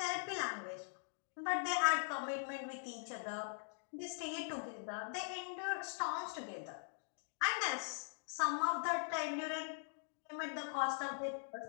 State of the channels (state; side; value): silent; right; digital silence